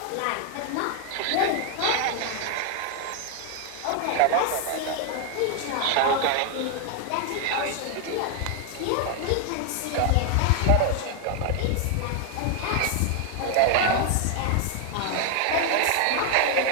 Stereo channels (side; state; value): both; different; correlation 0.01